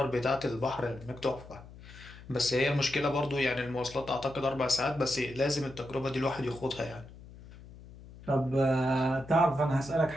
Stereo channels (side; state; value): left; noise; hum, 18 dB below the sound